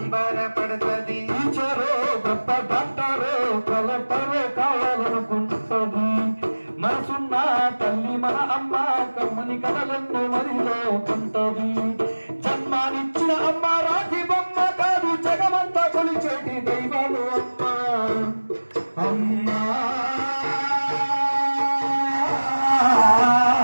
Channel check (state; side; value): inverted; both; correlation -1.00